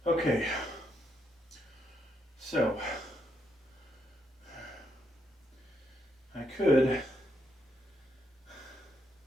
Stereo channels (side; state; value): both; normal; correlation 0.77